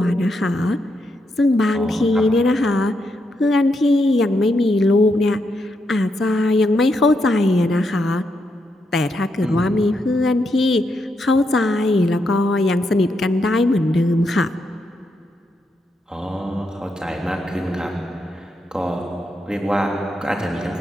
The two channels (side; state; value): both; normal; correlation 0.81